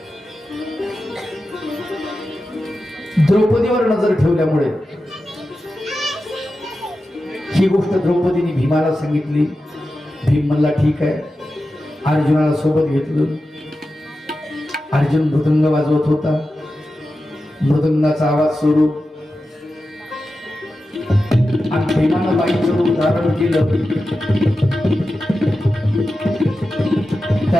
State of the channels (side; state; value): both; normal; correlation 0.92